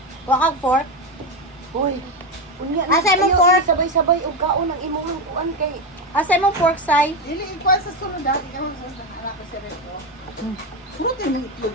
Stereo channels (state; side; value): normal; both; correlation 0.13